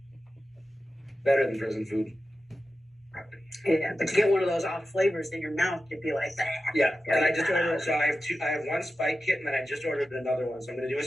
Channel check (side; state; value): both; normal; correlation 0.92